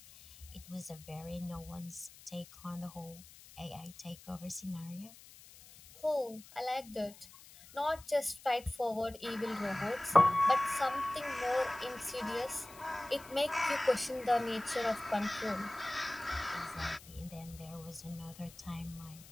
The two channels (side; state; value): left; noise; hiss, 20 dB below the sound